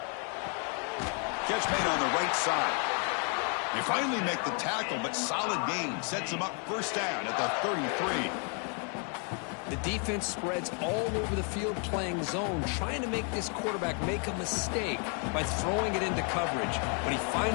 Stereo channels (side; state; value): right; quieter; 39.9 dB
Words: Catch made on the right side. They finally make the tackle, but solid gain sets them up first down at the 33. The defense spreads all over the field playing zone, trying to make this quarterback make a mistake by throwing it into coverage. But he